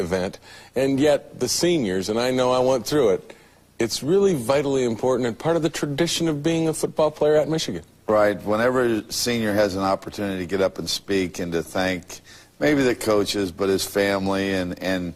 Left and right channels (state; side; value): identical; both; correlation 1.00